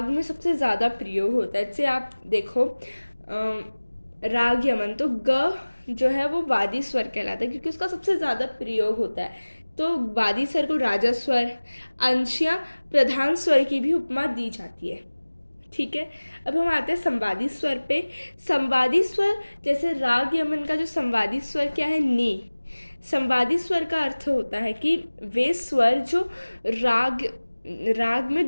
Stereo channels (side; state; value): both; inverted; correlation -1.00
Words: में सबसे ज़्यादा प्रयोग होता है। जैसे आप देखो राग यमन, तो ग जो है वो वादी स्वर कहलाता है क्योंकि उसका सबसे ज़्यादा प्रयोग होता है। तो वादी स्वर को राजा स्वर, अंश या प्रधान स्वर की भी उपमा दी जाती है। ठीक है, अब हम आते हैं संवादी स्वर पे। संवादी स्वर जैसे राग यमन का जो संवादी स्वर क्या है, नी। संवादी स्वर का अर्थ होता है कि वे स्वर जो राग में